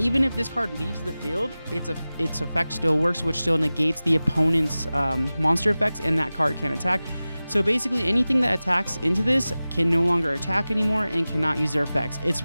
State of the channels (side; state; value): both; inverted; correlation -0.97